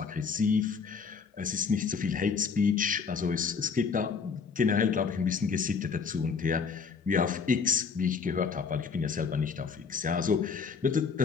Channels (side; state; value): right; quieter; 5.6 dB